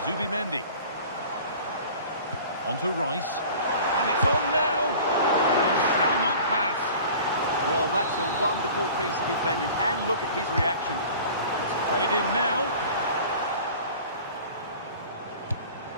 Zubimendi. On to Rice. And it's on now. He shall not pass. Well, that's a wonderful piece of defending, and look at his reaction. It's played in now.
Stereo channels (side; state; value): both; inverted; correlation -0.43